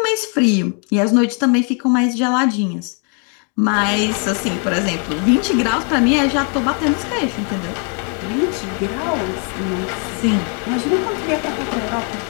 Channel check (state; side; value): quieter; right; 39.6 dB